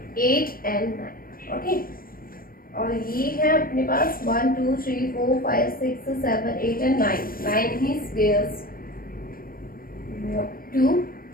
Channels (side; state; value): right; late; 0.42 ms